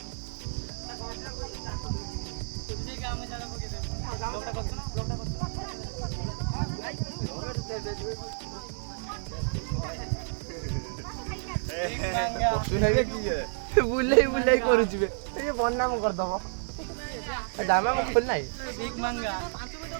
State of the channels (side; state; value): left; silent; digital silence